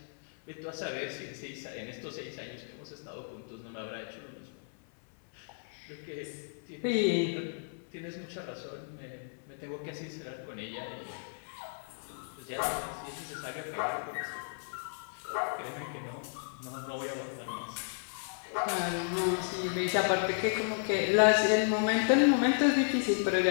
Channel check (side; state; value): right; silent; 55 dB below the other